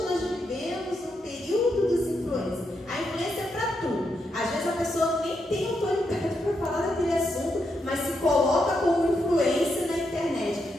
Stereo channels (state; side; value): normal; both; correlation 0.82